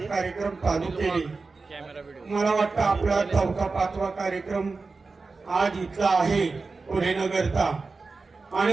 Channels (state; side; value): quieter; left; 4.0 dB